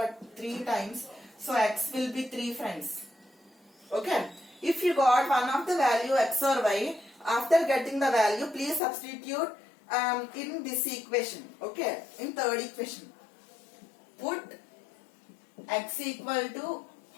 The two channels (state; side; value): drops out; right; at 8.8 s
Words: 3 times. So x will be 3 friends. Okay. If you got one of the value x or y, after getting the value, please substitute in this equation. Okay. In third equation. Put x equal to